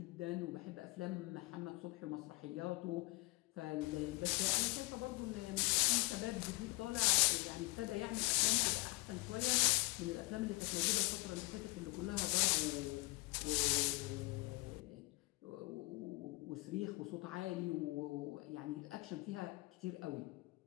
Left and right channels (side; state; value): right; quieter; 24.8 dB